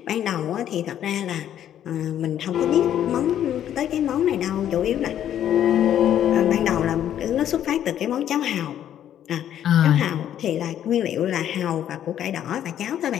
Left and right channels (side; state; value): right; quieter; 10.6 dB